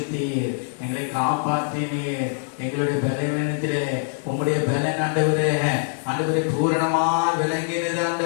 எங்களை காப்பாற்றினீர். எங்களுடைய பலவீனத்திலே உங்களுடைய பலன் ஆண்டவரே ஆண்டவரே பூரணமா விளங்கினது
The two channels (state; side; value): silent; right; digital silence